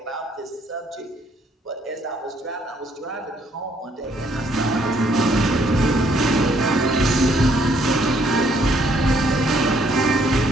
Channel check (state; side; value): normal; both; correlation 0.67